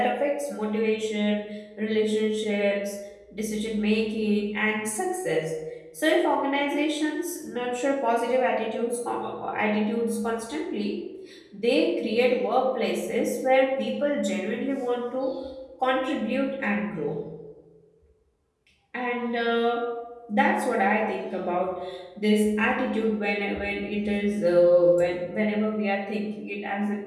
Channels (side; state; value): both; identical; correlation 1.00